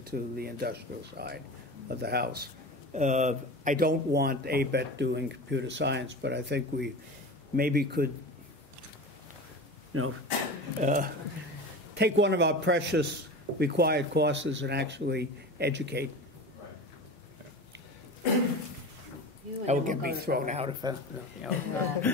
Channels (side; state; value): both; normal; correlation 0.31